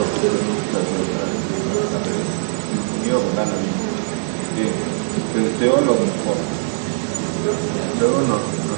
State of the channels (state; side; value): silent; left; digital silence